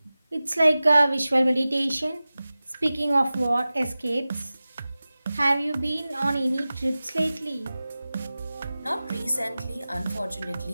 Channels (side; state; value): both; inverted; correlation -0.96